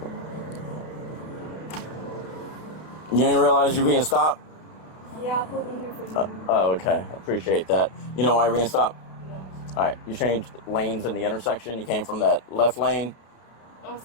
You didn't realize you were being stopped? Yeah, I pulled in here for you. Oh, okay. I appreciate that. You know why you're being stopped? Yeah. All right. You changed lanes in the intersection. You came from that left lane. I'm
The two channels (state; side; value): late; right; 32 ms